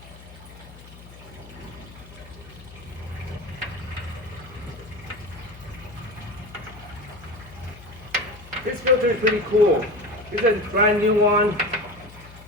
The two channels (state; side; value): noise; left; hum, 19 dB below the sound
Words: This filter is pretty cool. This is a brand new one.